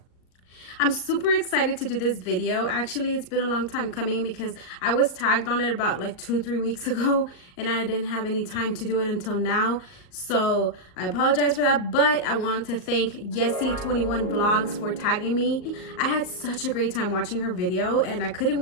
I'm super excited to do this video. Actually, it's been a long time coming because I was tagged on it about like 2-3 weeks ago and I didn't have any time to do it until now. So I apologize for that, but I want to thank YESSIII21 VLOGS for tagging me. I had such a great time watching her video and I couldn't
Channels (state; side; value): late; right; 39 ms